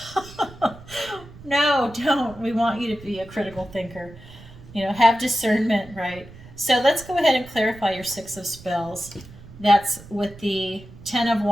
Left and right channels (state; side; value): noise; right; rumble, 19 dB below the sound